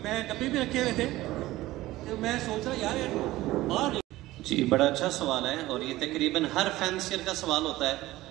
मैं डब्बे भी रखे हुए थे, तो मैं सोच रहा यार बाहर जी। बड़ा अच्छा सवाल है और ये तकरीबन हर फैंसियर का सवाल होता है,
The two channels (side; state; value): left; quieter; 17.2 dB